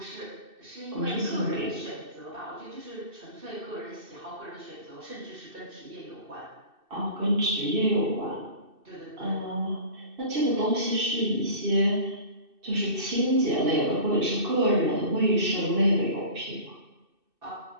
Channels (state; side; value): late; left; 2.6 ms